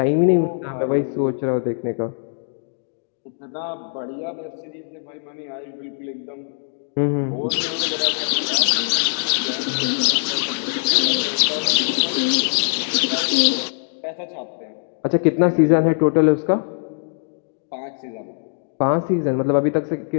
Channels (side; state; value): right; silent; digital silence